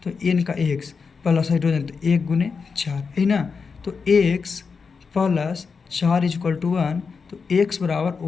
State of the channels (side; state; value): right; quieter; 5.3 dB